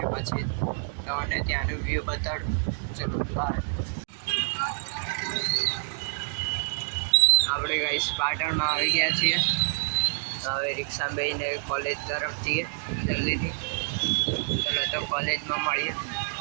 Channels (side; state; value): left; silent; digital silence